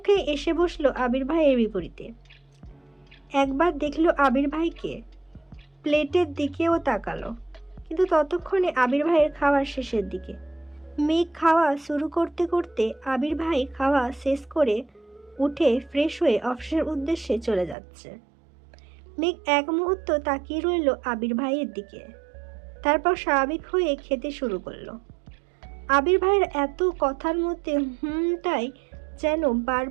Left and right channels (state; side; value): drops out; left; at 17.8 s